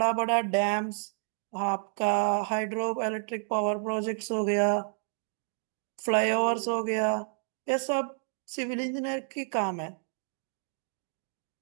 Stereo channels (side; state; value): left; silent; digital silence